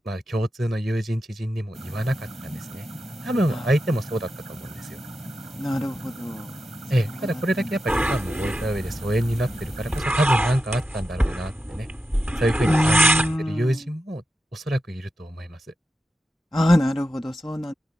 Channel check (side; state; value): both; normal; correlation 0.89